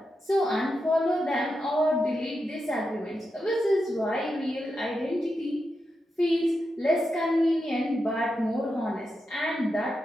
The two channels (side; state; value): both; normal; correlation 0.87